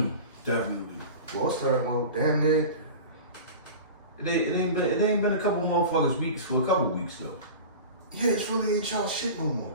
Definitely. Well, damn near. It ain't been a couple motherfuckers weeks for a couple weeks though. Yeah, it's really ain't y'all shit no more.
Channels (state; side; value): inverted; both; correlation -0.33